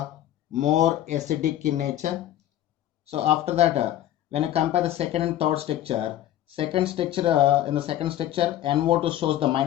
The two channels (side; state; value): right; quieter; 12.7 dB